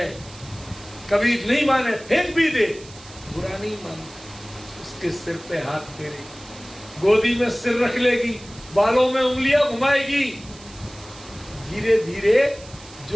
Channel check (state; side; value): noise; right; hiss, 20 dB below the sound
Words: कभी नहीं माने फेंक भी दे, बुरा नहीं मानती, उसके सिर पे हाथ फेरे, गोदी में सिर रख लेगी, बालों में उंगलियां घुमाएगी। धीरे धीरे